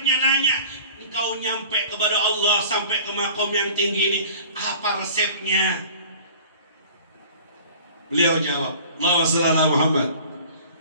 nanya, engkau nyampe kepada Allah sampai ke makom yang tinggi ini, apa resepnya? Beliau jawab, Allahumma shalli ala Muhammad.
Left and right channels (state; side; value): inverted; both; correlation -0.45